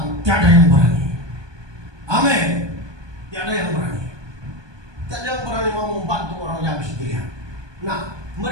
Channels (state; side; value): late; left; 1.2 ms